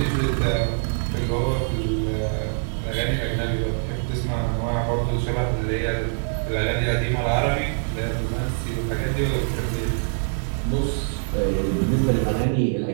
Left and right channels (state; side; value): silent; left; digital silence